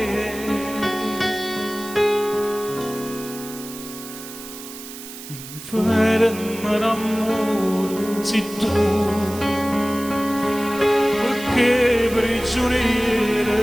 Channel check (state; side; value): noise; right; hiss, 13 dB below the sound